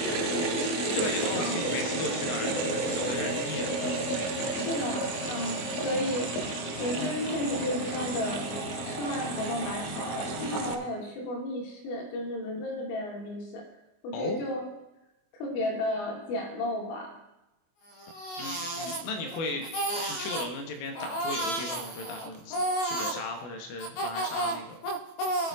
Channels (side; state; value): right; late; 24 ms